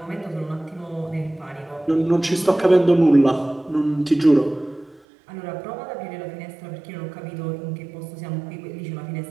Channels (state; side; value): drops out; left; at 5.0 s